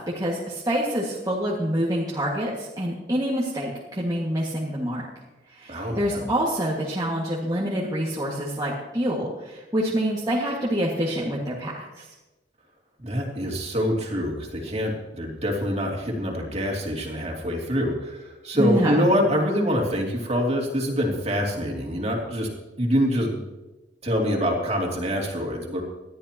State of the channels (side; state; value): both; normal; correlation 0.59